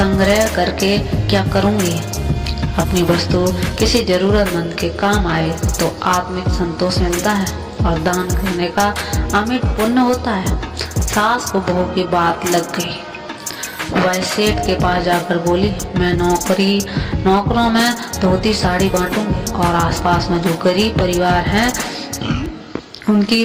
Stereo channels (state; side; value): identical; both; correlation 1.00